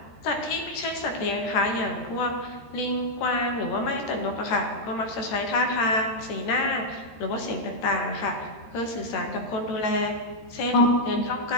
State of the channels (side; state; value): right; late; 13 ms